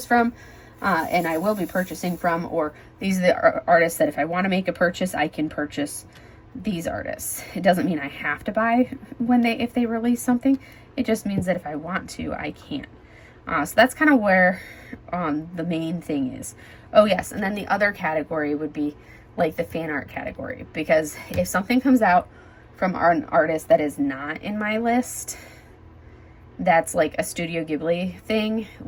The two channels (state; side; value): identical; both; correlation 1.00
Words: from. and I will be purchasing from, or these are the artists that if I want to make a purchase, I can purchase these artists. It doesn't mean I have to buy if they release something. It just means that if I want to, I can. So that's kind of where the main thing is. Oh yes, and then the other category would be like the fan art category, because if something comes out from an artist that is not in my list, that's like a Studio Ghibli thing.